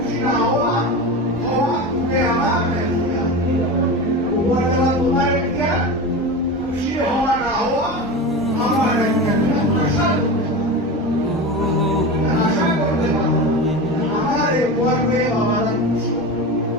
না হওয়া তুমি আমার উপহার দেওয়া তোমার একটা, খুশি হওয়া না হওয়া আমার একটা। আশা করতে পারো আমার এই করবে বাবারা খুশি,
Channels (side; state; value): both; normal; correlation 0.26